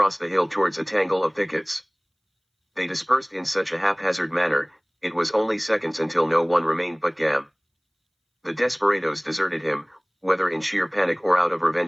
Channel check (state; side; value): identical; both; correlation 1.00